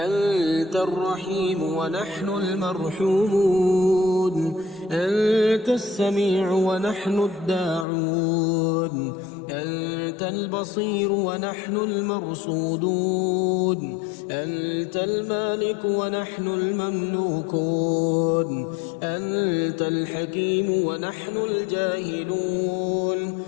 الرحيم ونحن المرحومون، أنت السميع ونحن الداعون، أنت البصير ونحن المرصودون، أنت المالك ونحن المملوكون، أنت الحكيم ونحن الجاهلون،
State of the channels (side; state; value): right; drops out; at 7.9 s